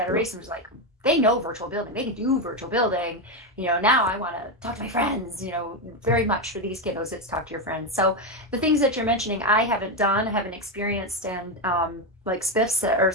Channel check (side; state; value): both; normal; correlation 0.10